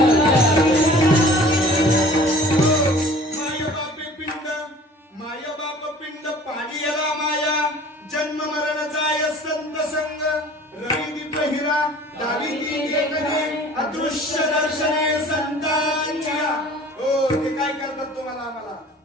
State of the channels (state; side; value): normal; both; correlation 0.47